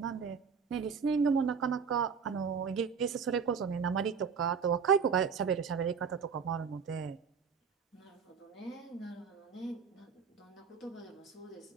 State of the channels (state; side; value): quieter; left; 6.3 dB